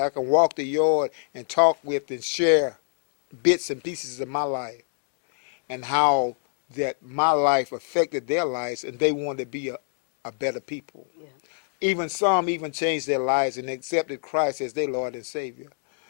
could walk the yard and talk with and share bits and pieces of my life, and how that my life affected their lives, and they wanted to be a better people. Yeah. Even some changed their lives and accepted Christ as their Lord and Savior.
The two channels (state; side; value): silent; right; 61 dB below the other